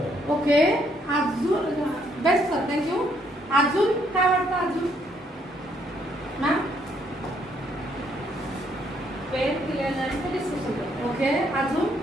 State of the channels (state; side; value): normal; both; correlation 0.70